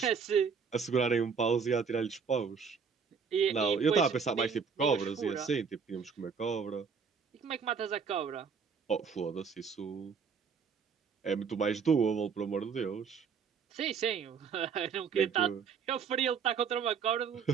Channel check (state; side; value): quieter; left; 6.1 dB